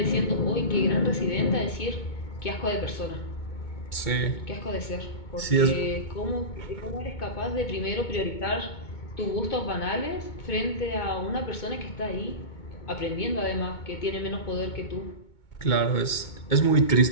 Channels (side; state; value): right; late; 2.2 ms